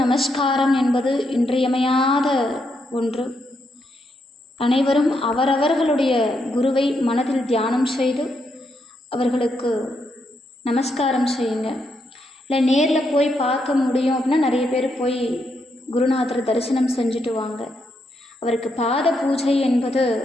நமஸ்காரம் என்பது இன்றியமையாத ஒன்று. அனைவரும் அவரவர்களுடைய குருவை மனதில் தியானம் செய்து அவர்களுக்கு நமஸ்காரம் செய்யுங்க. இல்லை நேரில் போய் பார்க்க முடியும் அப்படின்னா நிறைய பேர் போய் குருநாதர் தரிசனம் செஞ்சுட்டு வாங்க. அவருக்கு பாத பூஜை என்பது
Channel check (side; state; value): both; normal; correlation 0.79